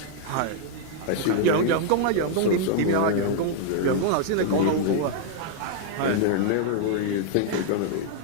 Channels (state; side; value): different; both; correlation 0.00